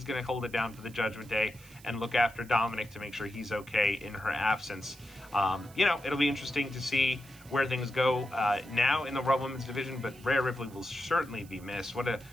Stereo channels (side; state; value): right; noise; hiss, 23 dB below the sound